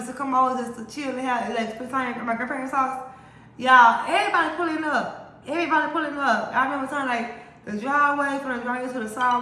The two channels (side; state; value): both; identical; correlation 1.00